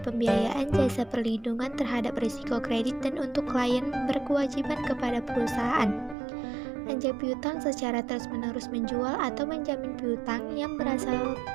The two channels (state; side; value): drops out; left; at 6.2 s